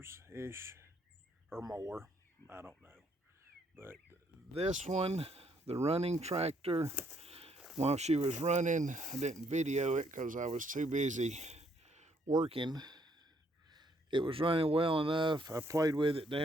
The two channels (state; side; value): normal; both; correlation 0.69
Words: or more. I don't know. But this one, the running tractor, while she was running, I didn't video it because I was too busy working. It was running well enough. I played with it